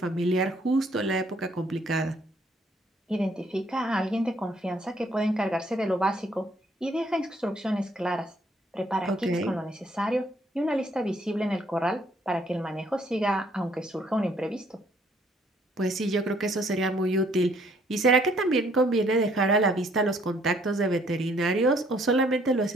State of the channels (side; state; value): both; normal; correlation 0.65